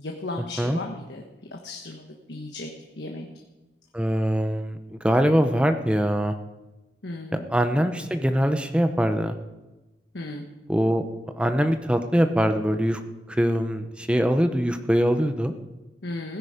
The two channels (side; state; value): both; normal; correlation 0.92